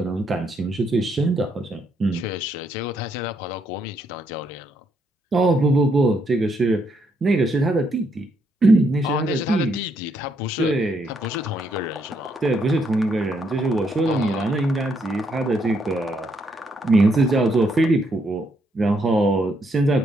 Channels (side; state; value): both; normal; correlation 0.75